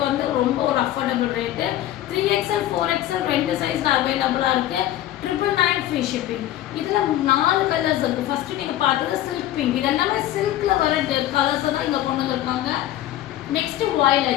வந்து ரொம்ப ஒரு அஃபோர்டபுள் ரேட்டு. 3XL 4XL 2 சைஸில் அவைலபிளாக இருக்குது. 999 ஃப்ரீ ஷிப்பிங். இதில் 4 கலர்ஸ் இருக்குது. ஃபஸ்ட்டு நீங்கள் பார்த்தது சில்க் பிங்க். இது எல்லாமே சில்கில் வர கலர்ஸை தான் இங்கே கொண்டு வந்திருக்காங்க. Next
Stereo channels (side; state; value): right; quieter; 13.5 dB